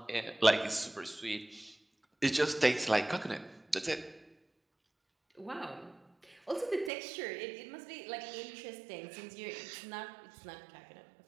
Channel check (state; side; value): drops out; left; at 6.9 s